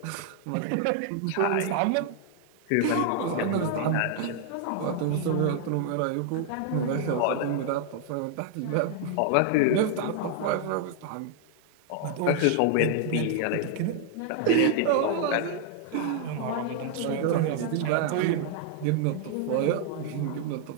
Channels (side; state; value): both; different; correlation 0.00